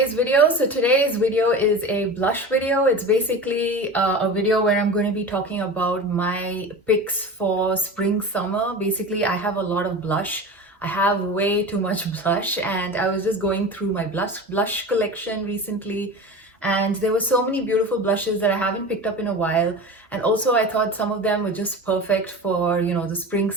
video. So today's video is a blush video. It's basically a video where I'm going to be talking about my picks for spring summer. Basically, I have a lot of blush. I have way too much blush, and I was just going through my blush collection recently, and there were so many beautiful blushes that I haven't picked up in a while. And also I thought some of them were just perfect for, the spring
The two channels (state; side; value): normal; both; correlation 0.31